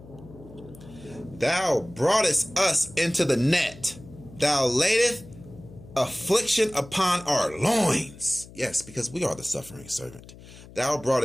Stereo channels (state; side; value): noise; left; hum, 19 dB below the sound